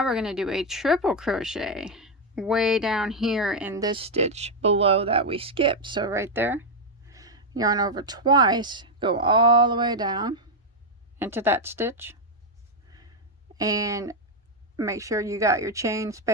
we're going to do a triple crochet way down here in this stitch below that we skipped. So right there, yarn over twice, go all the way down into that stitch, and make sure you got your chain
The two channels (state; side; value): normal; both; correlation 0.02